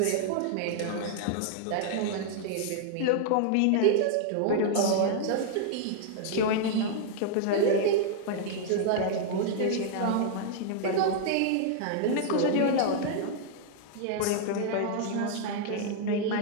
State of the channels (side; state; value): both; different; correlation -0.01